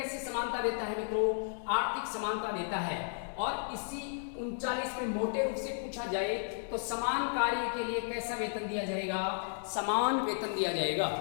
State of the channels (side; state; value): right; silent; digital silence